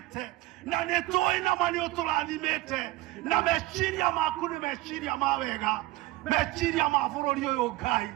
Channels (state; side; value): quieter; left; 18.3 dB